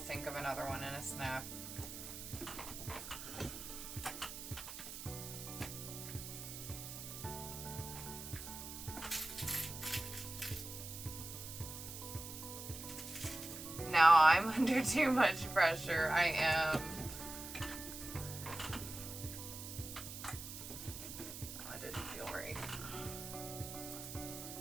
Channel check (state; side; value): noise; right; hiss, 9 dB below the sound